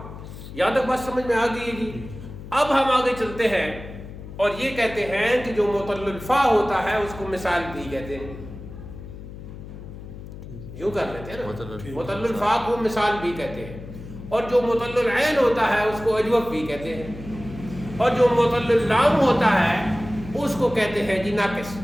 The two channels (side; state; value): left; noise; hum, 13 dB below the sound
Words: یہاں تک بات سمجھ میں آ گئی ہے جی. اب ہم آگے چلتے ہیں اور یہ کہتے ہیں کہ جو معطل الفا ہوتا ہے اس کو مثال بھی کہتے ہیں. یوں کر لیتے ہیں نا, معطل الفا کو مثال بھی کہتے ہیں, اور جو معطل العین ہوتا ہے اس کو اجوف بھی کہتے ہیں, اور جو معطل اللام ہوتا ہے اس کو کہتے ہیں جی ناقص.